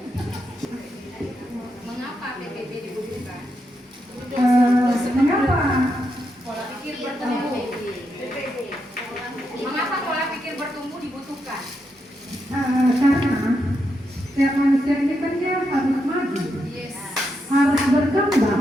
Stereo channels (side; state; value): both; normal; correlation 0.83